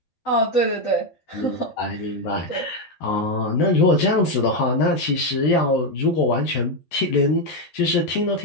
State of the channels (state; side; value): late; right; 12 ms